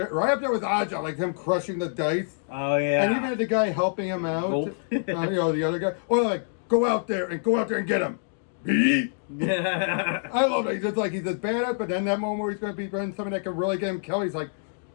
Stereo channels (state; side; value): silent; right; digital silence